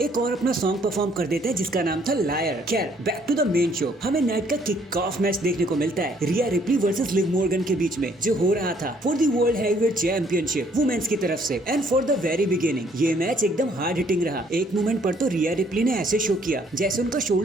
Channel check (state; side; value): normal; both; correlation 0.64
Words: एक और अपना सॉन्ग परफॉर्म कर देते हैं जिसका नाम था लायर। खैर back to the main show, हमें नाइट का किक ऑफ मैच देखने को मिलता है Rhea Ripley versus Liv Morgan के बीच में, जो हो रहा था for the world heavyweight championship women's की तरफ से। And for the very beginning ये मैच एकदम हार्ड हिटिंग रहा। एक मोमेंट पर तो रिया रिप्ली ने ऐसे शो किया जैसे उनका